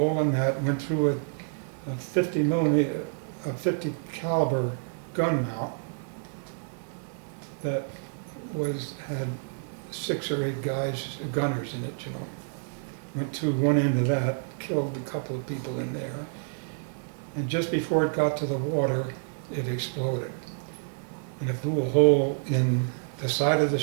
in that, went through a 50 millimeter, a 50 caliber gun mount that had 6 or 8 gunners in it, you know. Went through one end of that, killed a couple of people in there, and just before it got to the water, it exploded. And it blew a hole in the side of the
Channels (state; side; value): silent; left; digital silence